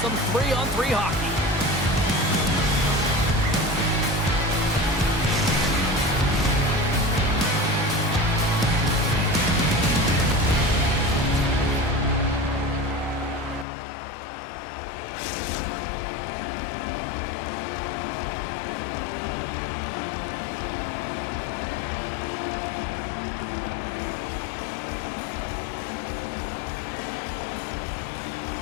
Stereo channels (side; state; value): right; drops out; at 13.7 s